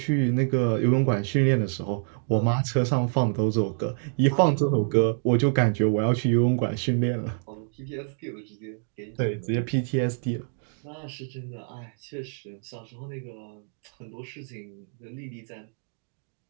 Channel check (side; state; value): left; silent; 60 dB below the other